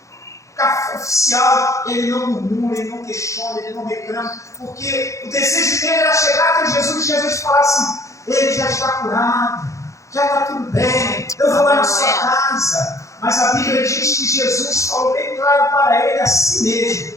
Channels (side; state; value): right; late; 0.15 ms